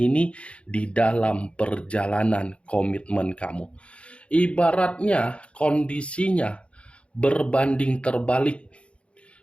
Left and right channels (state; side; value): late; right; 0.060 ms